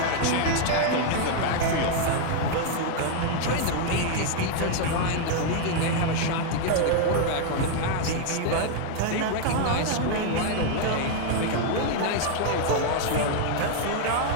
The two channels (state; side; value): different; both; correlation 0.00